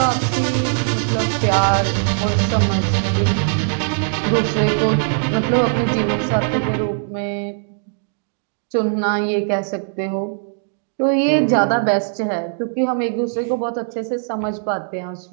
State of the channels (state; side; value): silent; left; digital silence